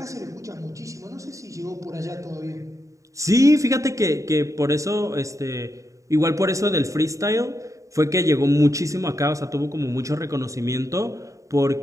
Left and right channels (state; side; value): late; left; 0.16 ms